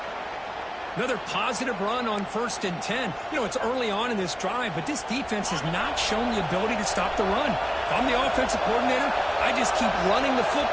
Another positive run on 1st and 10. You know, it's early on in this drive, but this defense has not shown the ability to stop the run. If I'm the offensive coordinator, I just keep running the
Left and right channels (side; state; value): both; identical; correlation 1.00